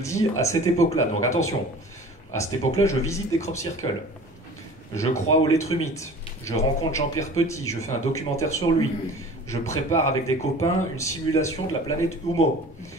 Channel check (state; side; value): normal; both; correlation 0.43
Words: à cette époque-là, donc attention, à cette époque-là, je visite des crop circles. Je crois au lettrumite. Je rencontre Jean-Pierre Petit, je fais un documentaire sur lui. Je prépare avec des copains une simulation de la planète Humo.